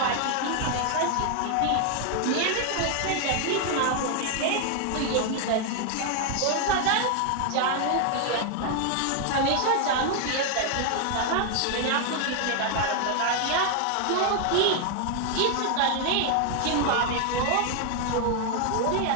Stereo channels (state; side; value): different; both; correlation 0.00